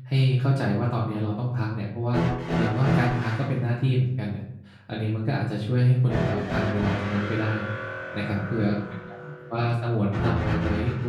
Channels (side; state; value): both; identical; correlation 1.00